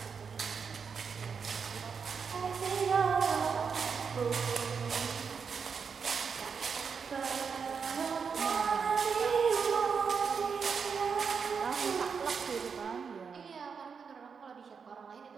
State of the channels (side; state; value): left; quieter; 6.0 dB